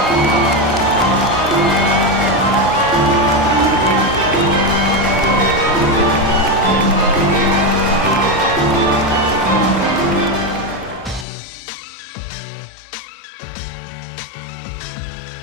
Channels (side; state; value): right; drops out; at 11.2 s